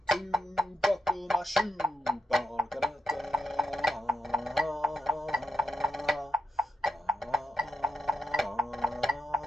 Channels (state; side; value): normal; both; correlation 0.84